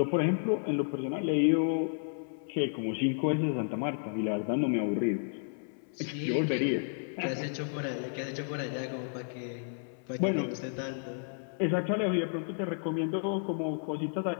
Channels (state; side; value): silent; right; 56 dB below the other